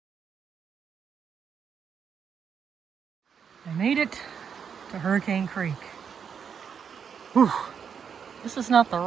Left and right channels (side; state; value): left; quieter; 7.1 dB